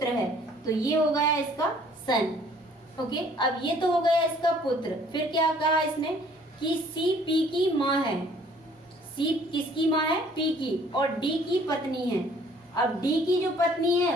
है, तो ये हो गया इसका सन। ओके, अब ये तो हो गया इसका पुत्र। फिर क्या कहा इसने कि सी पी की माँ है, सी किसकी माँ है, पी की, और डी की पत्नी है। अब डी की जो पत्नी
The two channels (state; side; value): normal; both; correlation 0.57